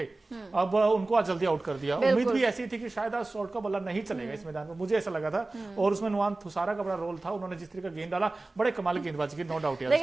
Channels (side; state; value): left; quieter; 3.1 dB